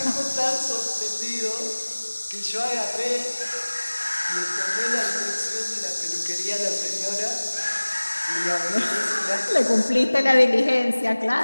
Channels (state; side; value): inverted; both; correlation -1.00